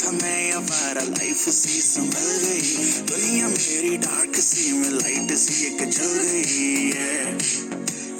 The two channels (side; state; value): both; identical; correlation 1.00